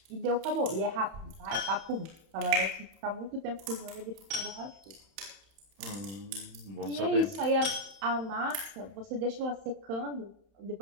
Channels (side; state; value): left; late; 31 ms